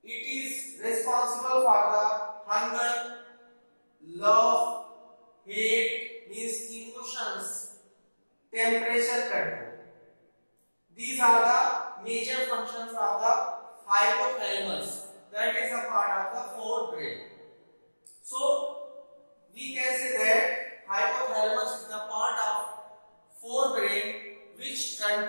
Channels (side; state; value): both; inverted; correlation -1.00